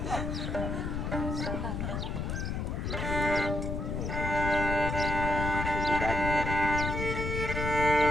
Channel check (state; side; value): noise; left; rumble, 2 dB below the sound